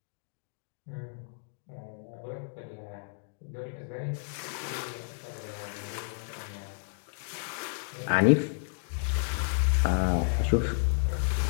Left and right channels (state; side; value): silent; right; digital silence